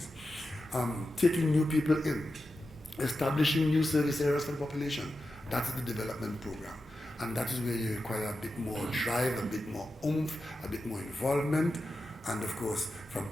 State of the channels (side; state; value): both; normal; correlation 0.91